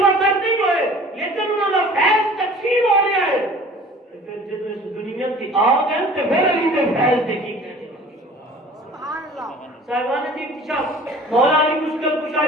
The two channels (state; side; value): normal; both; correlation 0.46